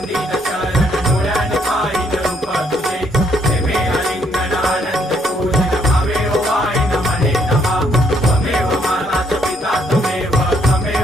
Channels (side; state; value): both; normal; correlation 0.70